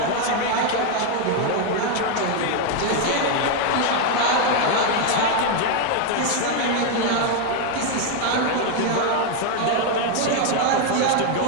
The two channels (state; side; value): different; both; correlation 0.01